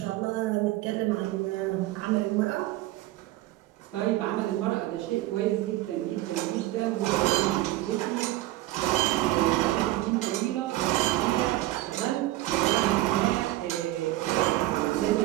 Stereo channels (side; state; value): left; quieter; 16.8 dB